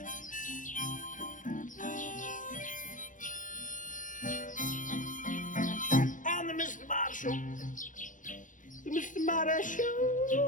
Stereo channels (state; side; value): late; right; 0.38 ms